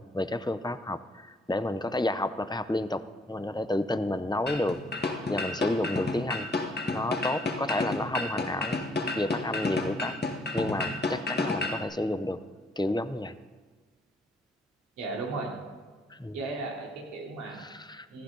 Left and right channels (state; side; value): normal; both; correlation 0.65